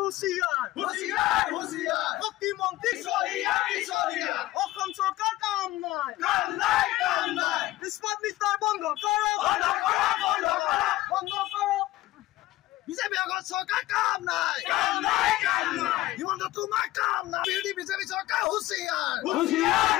বিজেপি আগত চৰকাৰ কাম নাই, হিমন্ত তোমাৰ কাম নাই। বিৰোধী বিজেপি চৰকাৰ হুঁচিয়াৰ,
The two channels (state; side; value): quieter; right; 16.8 dB